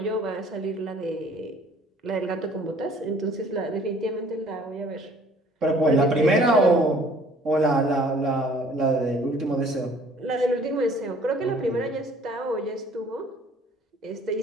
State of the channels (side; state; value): both; normal; correlation 0.55